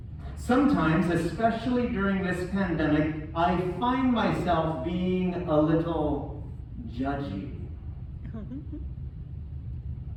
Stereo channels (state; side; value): identical; both; correlation 1.00